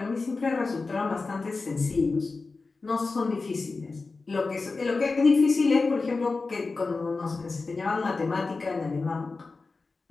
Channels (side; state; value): right; quieter; 3.9 dB